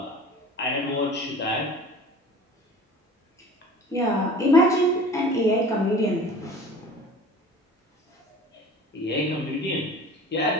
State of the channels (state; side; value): normal; both; correlation 0.42